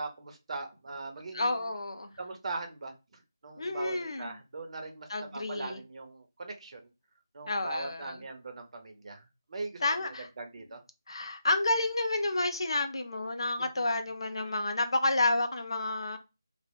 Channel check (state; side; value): inverted; both; correlation -0.80